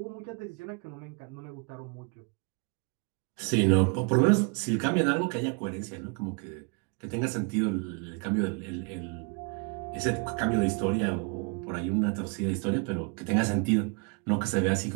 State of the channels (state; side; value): quieter; left; 35.1 dB